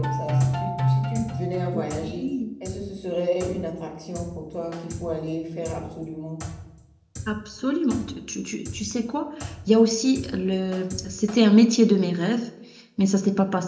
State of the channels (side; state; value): both; identical; correlation 1.00